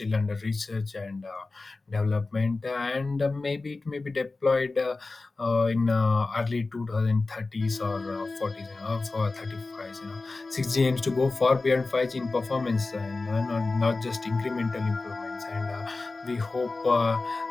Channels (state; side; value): quieter; right; 3.5 dB